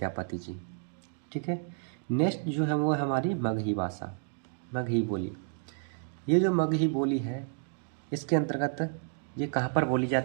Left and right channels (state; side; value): silent; left; 57 dB below the other